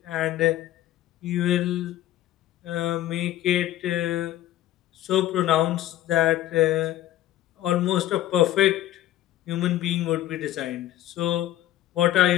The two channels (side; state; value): right; quieter; 13.7 dB